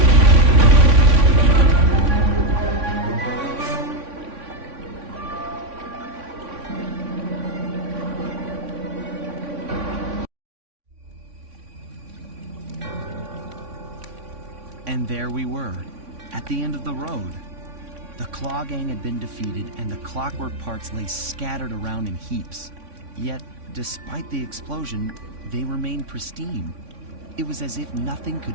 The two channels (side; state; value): left; late; 3.5 ms